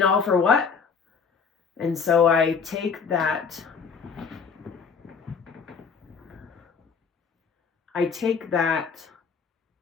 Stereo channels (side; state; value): right; quieter; 5.8 dB